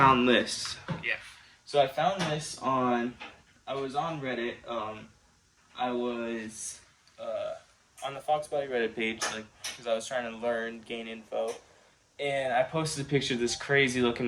this. Yeah. So I found this I was on Reddit. I was on the Fox Body Reddit page, like, because I was trying to gain info. And I posted a picture of this crazy looking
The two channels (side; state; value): both; identical; correlation 1.00